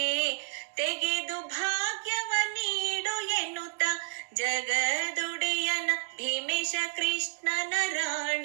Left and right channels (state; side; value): silent; left; digital silence